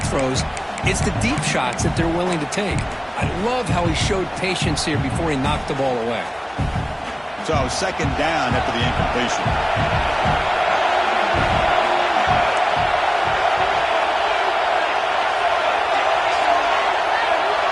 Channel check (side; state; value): both; identical; correlation 1.00